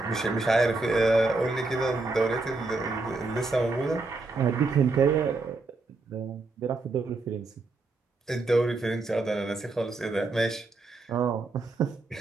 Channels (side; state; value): left; quieter; 3.4 dB